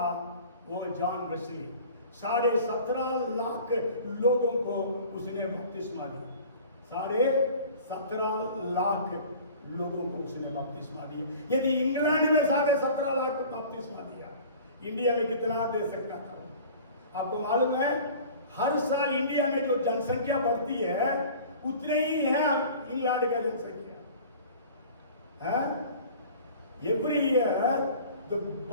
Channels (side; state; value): both; inverted; correlation -0.44